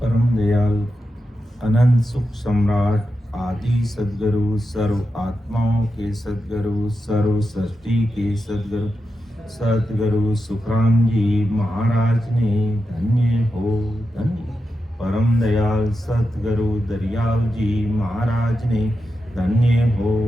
परम दयाल अनंत सुख सम्राट आदि सदगुरु सर्व आत्माओं के सदगुरु सर्व सृष्टि के सदगुरु सदगुरु सुखराम जी महाराज ने धन्य हो धन्य। परम दयाल सतगुरु दरियाव जी महाराज ने धन्य हो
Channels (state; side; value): normal; both; correlation 0.89